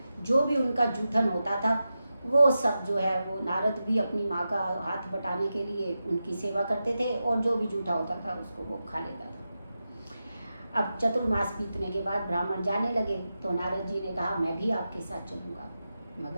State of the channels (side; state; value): both; inverted; correlation -0.91